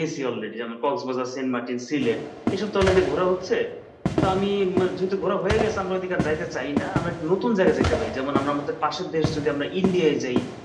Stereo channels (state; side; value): identical; both; correlation 1.00